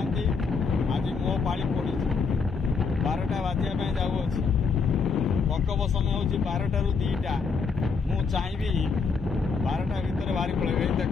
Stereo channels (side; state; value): right; quieter; 5.0 dB